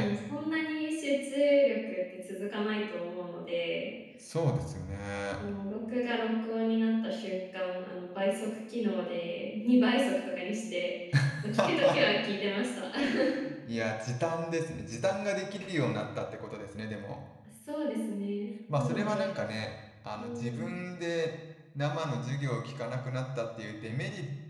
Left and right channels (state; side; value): identical; both; correlation 1.00